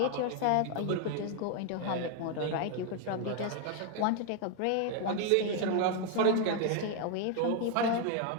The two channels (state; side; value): different; both; correlation 0.00